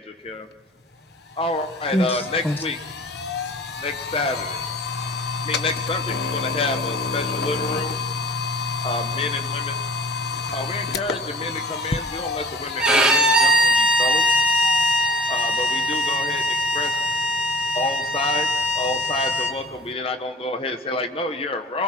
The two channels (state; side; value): normal; both; correlation 0.42